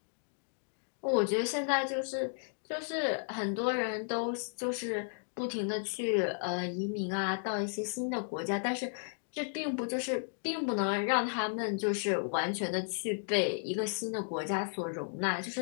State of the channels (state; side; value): silent; right; digital silence